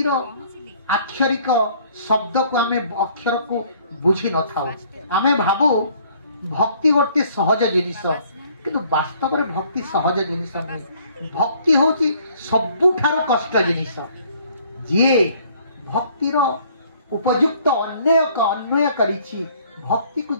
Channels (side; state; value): both; inverted; correlation -0.59